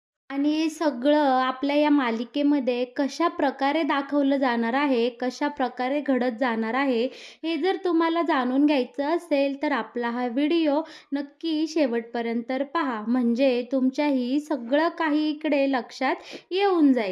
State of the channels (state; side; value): identical; both; correlation 1.00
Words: आणि हे सगळं आपल्या या मालिकेमध्ये कशा प्रकारे दाखवलं जाणार आहे, कशा प्रकारे घडत जाणार आहे, हे जर तुम्हाला जाणून घ्यायचं असेल तर आपला हा व्हिडिओ नक्की शेवटपर्यंत पहा. म्हणजे तुमच्याही सगळं काही इकडे लक्षात येऊन